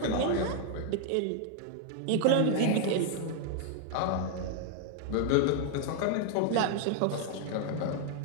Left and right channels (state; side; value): different; both; correlation 0.00